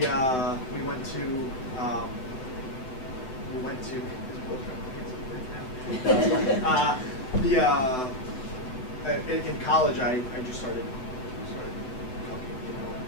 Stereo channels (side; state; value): right; late; 7.8 ms